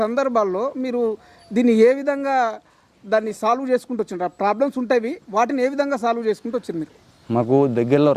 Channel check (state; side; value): identical; both; correlation 1.00